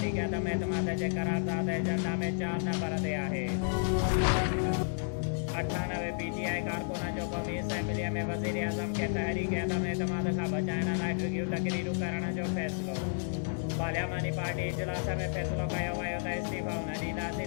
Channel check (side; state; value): right; silent; digital silence